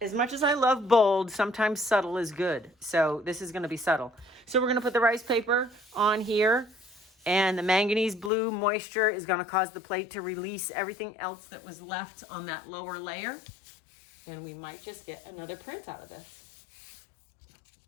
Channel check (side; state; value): right; drops out; at 8.3 s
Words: much as I love bold, sometimes subtle is good. So this is going to be subtle. So we're going to put the rice paper on here, and the manganese blue moisture is going to cause the plate to release everything else that was left on that lower layer. And we might just get another print out of this.